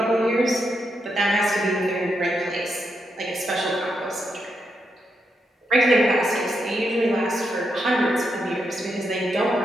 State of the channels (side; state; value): both; normal; correlation 0.82